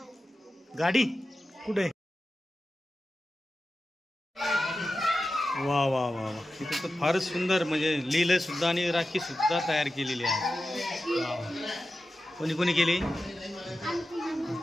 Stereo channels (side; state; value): both; normal; correlation 0.93